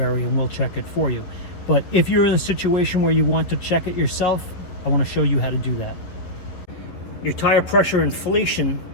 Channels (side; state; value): right; late; 11 ms